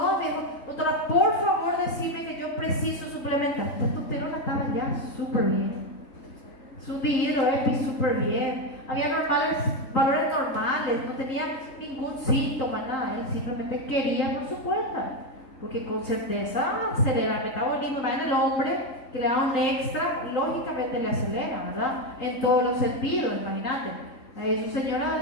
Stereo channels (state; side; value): late; right; 3.8 ms